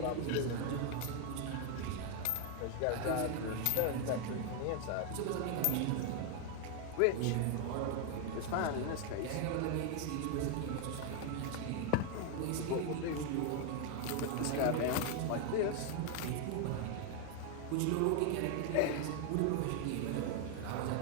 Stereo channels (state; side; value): different; both; correlation 0.00